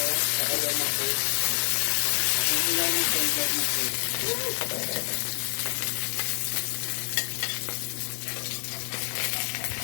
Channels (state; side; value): silent; right; digital silence